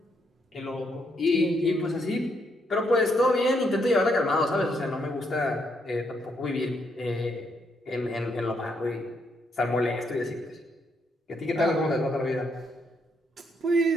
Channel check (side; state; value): both; normal; correlation 0.75